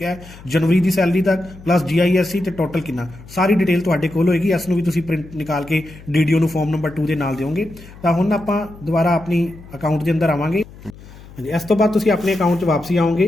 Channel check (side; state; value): left; noise; hum, 19 dB below the sound